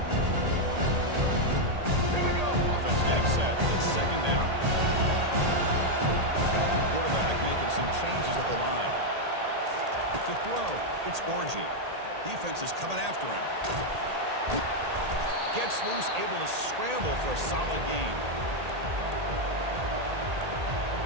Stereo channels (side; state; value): left; late; 1.8 ms